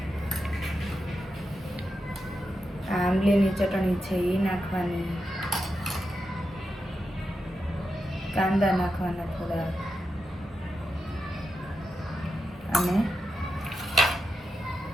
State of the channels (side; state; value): both; normal; correlation 0.87